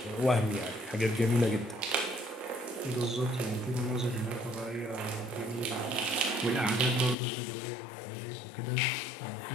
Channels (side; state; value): right; drops out; at 7.2 s